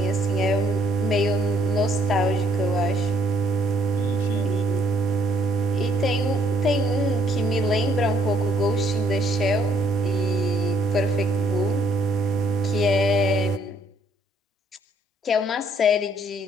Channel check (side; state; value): both; normal; correlation 0.67